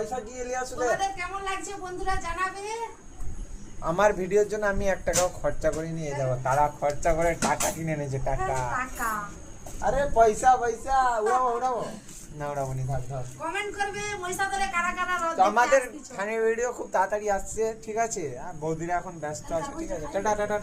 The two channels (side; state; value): both; identical; correlation 1.00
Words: কি এলি আসলে? তোমাদের কেমন লাগছে বন্ধুরা জানাবে। আমার ভিডিওর জন্য আমি 1 টাকাও খরচা করে নিয়ে যাবো। তারা খরচা করে টাকা কিনে এনেছে, টাকা। টাকা আরে পয়সা পয়সা উড়াবো উড়াবো না, উড়াবো নি, থাক থাক। কমেন্ট করবে মহিষাদলে কারা কারা রথ তো দেখতে আমাদের আসতেছো। ফানি ভিডিও খুব তাড়াতাড়ি আসছে, ঠিক আছে? আর বৌদিরা এখন ব্যস্ত আছে, ঠিক আছে? টাটা টাটা